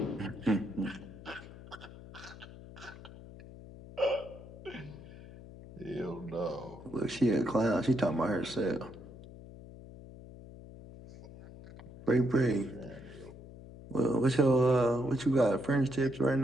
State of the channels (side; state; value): left; noise; hum, 16 dB below the sound